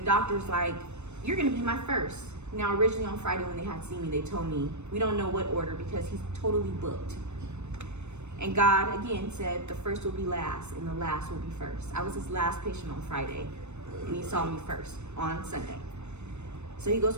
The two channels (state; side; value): late; left; 0.82 ms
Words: like, you're gonna be my first. Now, originally on Friday when they had seen me, they told me, we don't know what order because he's totally booked. And God, again, said the first will be last and the last will be first. I was his last patient on Friday, and he saw me first on Sunday. So he goes,